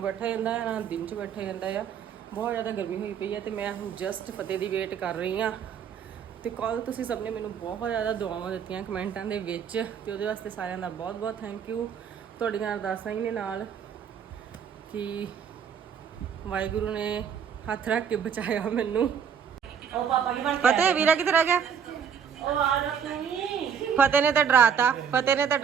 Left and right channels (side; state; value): left; quieter; 7.5 dB